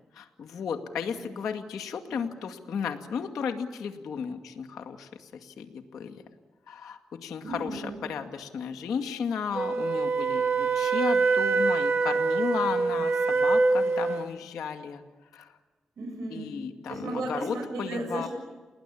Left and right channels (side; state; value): both; normal; correlation 0.81